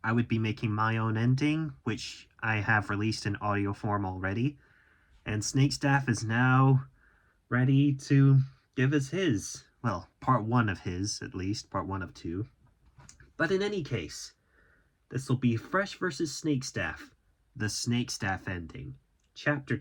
I would be making my own ending, which I have released in audio form already. And Snakestaff is now ready to give us his. Well, part one of his, at least, part one of two. But in any case, this will be Fresh vs. Snakestaff, the Snakestaff ending. Chapter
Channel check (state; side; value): identical; both; correlation 1.00